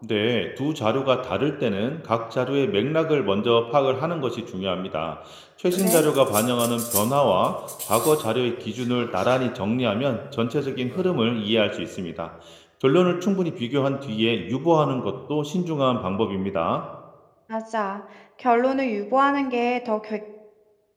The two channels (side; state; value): both; identical; correlation 1.00